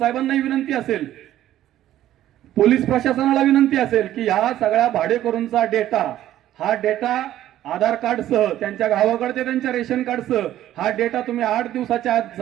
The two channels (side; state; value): left; quieter; 12.9 dB